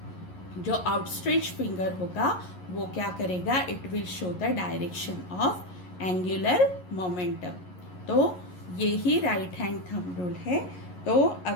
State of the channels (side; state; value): right; late; 11 ms